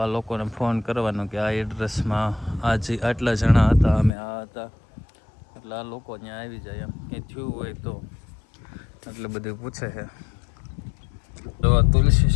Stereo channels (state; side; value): drops out; right; at 4.1 s